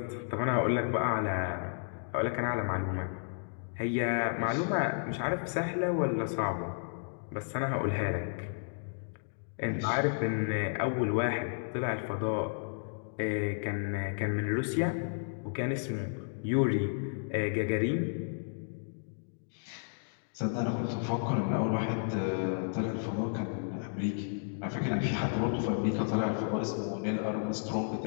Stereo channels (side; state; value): right; silent; digital silence